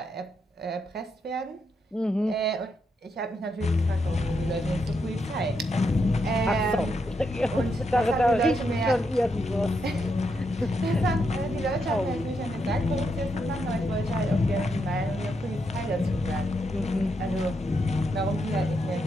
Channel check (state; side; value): normal; both; correlation 0.81